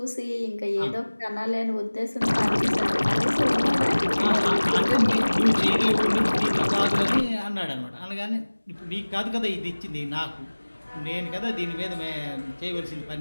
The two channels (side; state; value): both; inverted; correlation -1.00